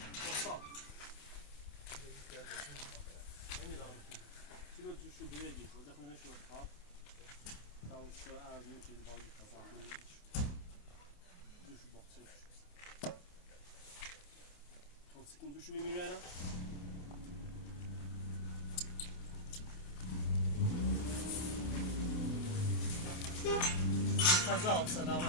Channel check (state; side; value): late; right; 28 ms